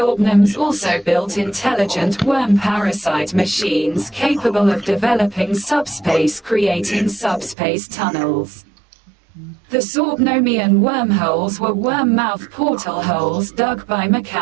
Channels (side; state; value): left; drops out; at 7.6 s